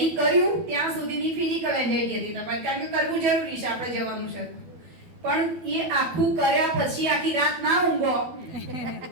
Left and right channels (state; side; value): late; left; 12 ms